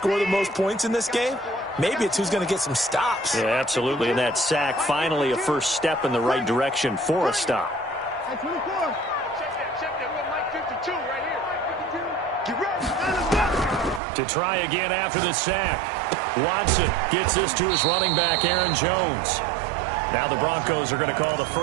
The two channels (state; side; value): drops out; left; at 14.0 s